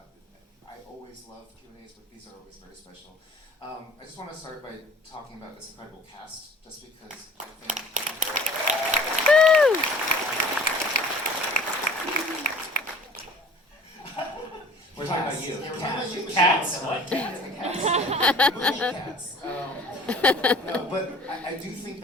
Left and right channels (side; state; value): both; normal; correlation 0.48